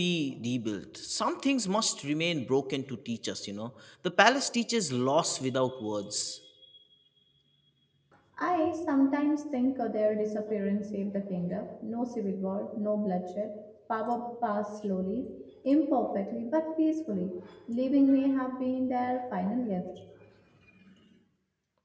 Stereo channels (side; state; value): both; identical; correlation 1.00